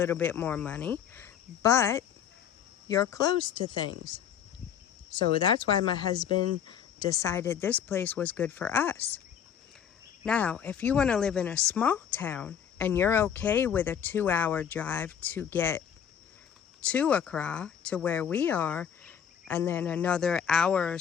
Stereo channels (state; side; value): quieter; right; 8.5 dB